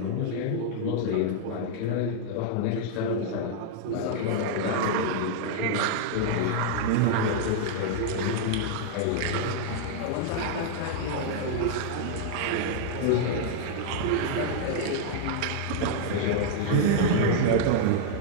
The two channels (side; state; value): both; different; correlation -0.01